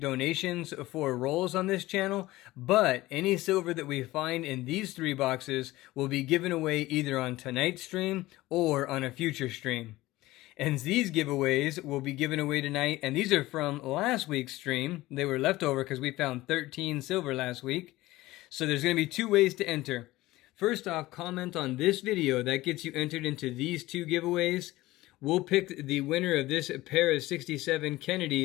donations for rolls on this channel, but any silver that we find in these 3 boxes will be given away either on tonight's stream or on a future stream. And these giveaways will be given away tonight, and these are from last week's stream. They were left over because we found 13 silver last week. So there's going to be 2 ways to enter. First off, comment on this video. That gets you entered into these 2 giveaways. We'll pick the winner of this pair of 67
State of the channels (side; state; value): right; quieter; 18.0 dB